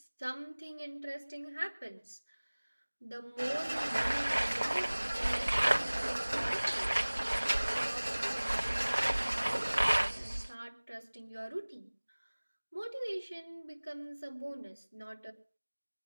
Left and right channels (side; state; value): both; inverted; correlation -1.00